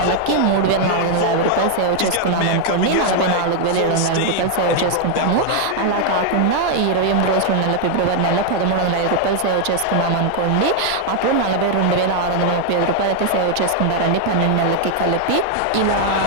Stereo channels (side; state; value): both; different; correlation 0.00